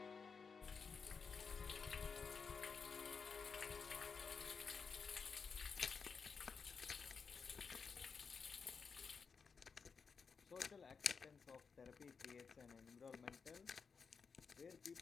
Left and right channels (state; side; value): quieter; right; 5.5 dB